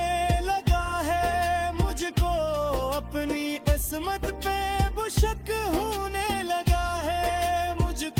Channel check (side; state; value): both; identical; correlation 1.00